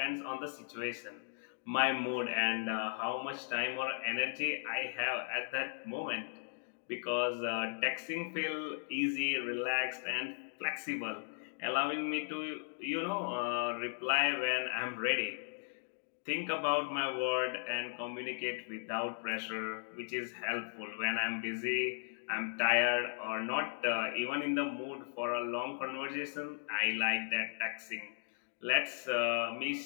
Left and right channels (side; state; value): right; silent; digital silence